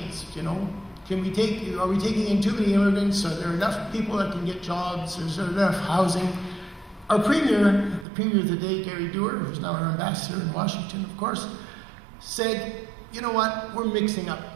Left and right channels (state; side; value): drops out; left; at 8.1 s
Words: You know, are we taking in too many immigrants? Are there enough people that can get jobs? Is there enough housing? Our premier, the premier of the day, Gerry, who's now our ambassador in Washington, of course, said, you know what, we're mixing up.